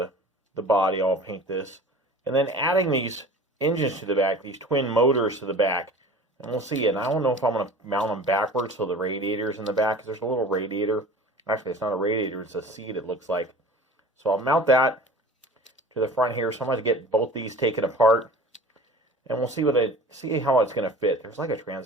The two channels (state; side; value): normal; both; correlation 0.41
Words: body, I'll paint this, and then adding these engines to the back, these twin motors to the back. And we'll see. And I don't know if I'm going to mount them backwards so the radiator's in the back, because there's a little radiator. Actually, it's not a radiator, it's a seat, it looks like. So I'll mount that to the front here. So I'm going to get both these taken apart, and we'll see see how it's going to fit. There's like a